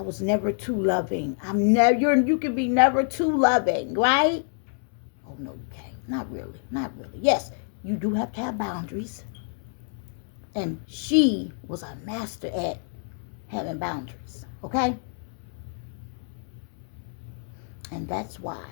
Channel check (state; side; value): silent; right; 60 dB below the other